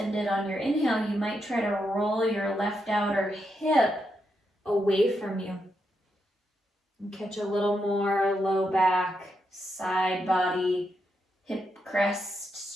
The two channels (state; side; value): normal; both; correlation 0.83